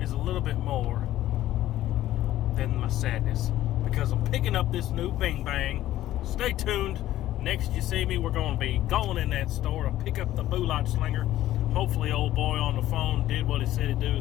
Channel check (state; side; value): quieter; right; 14.0 dB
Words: a little bit more than my sadness, because I'm picking up this new Bing Bang. Stay tuned. Next you see me, we're going to be going in that store to pick up the Bullet Slinger. Hopefully old boy on the phone did what he said he'd